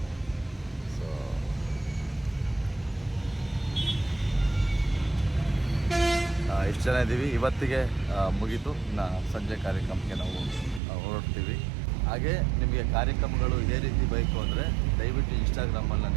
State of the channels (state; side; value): drops out; left; at 10.8 s